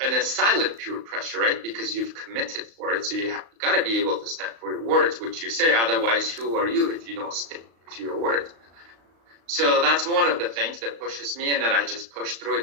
a silent pure pressure, right? Because you've committed for it. So you got to be able to stand for your words, which you say. Otherwise, who are you if you don't stick to your words? So that's one of the things that pushes me and that I just push through it.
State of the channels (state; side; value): late; left; 35 ms